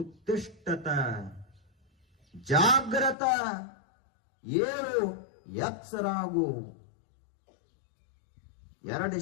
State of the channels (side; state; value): right; drops out; at 3.2 s